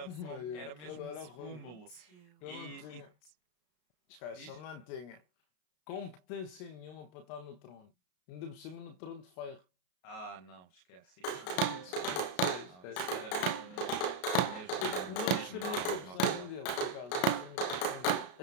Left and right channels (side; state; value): right; late; 33 ms